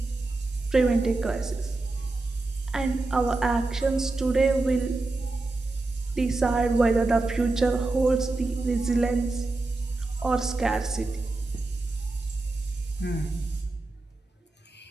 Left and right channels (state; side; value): quieter; left; 3.1 dB